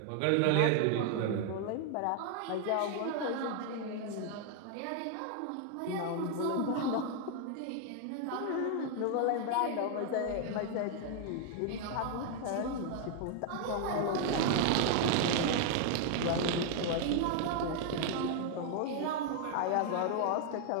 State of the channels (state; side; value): different; both; correlation 0.00